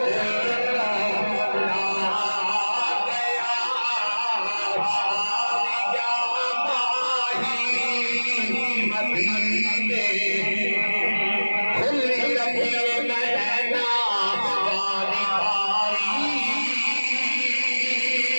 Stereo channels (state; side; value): inverted; both; correlation -1.00